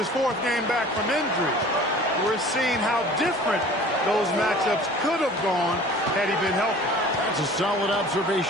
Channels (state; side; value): normal; both; correlation 0.45